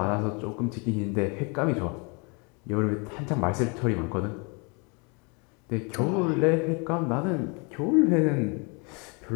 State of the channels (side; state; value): right; quieter; 32.8 dB